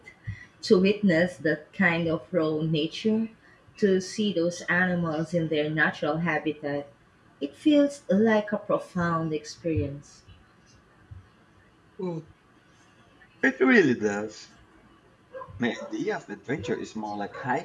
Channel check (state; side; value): identical; both; correlation 1.00